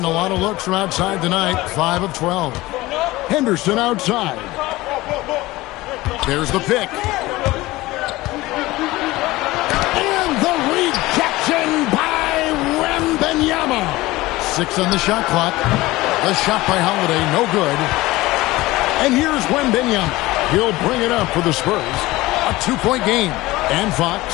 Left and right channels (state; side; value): quieter; right; 19.1 dB